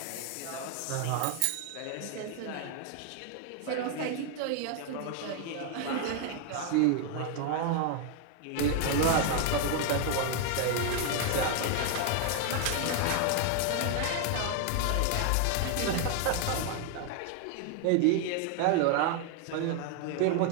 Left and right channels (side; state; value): both; different; correlation 0.00